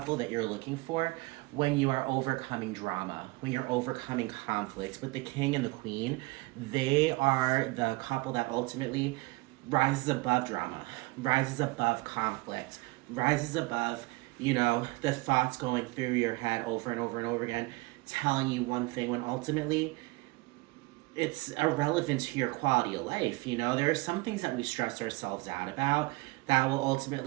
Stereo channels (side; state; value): left; quieter; 23.7 dB